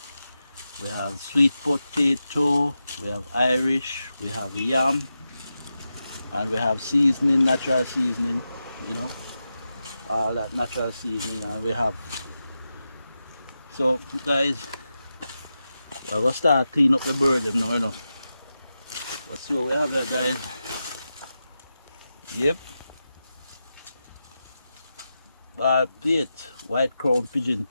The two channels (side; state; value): both; inverted; correlation -0.90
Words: we have sweet potato, we have Irish, we have yam, and we have seasoning, natural seasoning, you know, all that natural seasoning, and we have. So guys, we're gonna start clean up the bird them now, you know. Let's see what we have there, guys. Yep. Bald plate, white crown pigeon